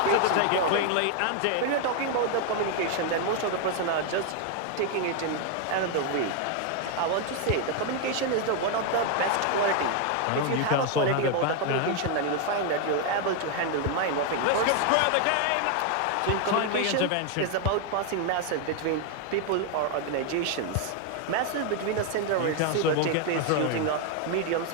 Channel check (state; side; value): different; both; correlation 0.01